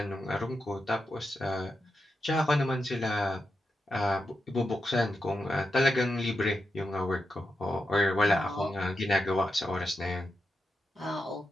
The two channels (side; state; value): both; normal; correlation 0.87